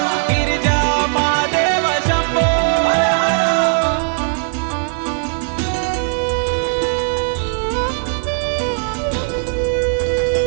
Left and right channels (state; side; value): silent; left; 61 dB below the other